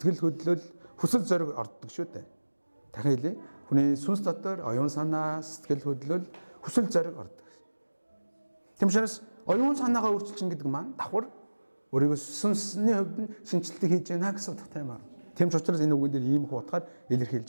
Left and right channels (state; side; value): inverted; both; correlation -1.00